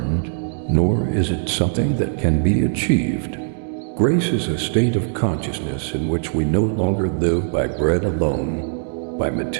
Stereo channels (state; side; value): silent; left; digital silence